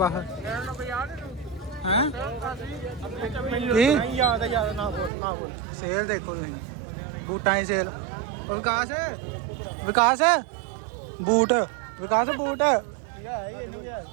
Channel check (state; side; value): drops out; left; at 5.1 s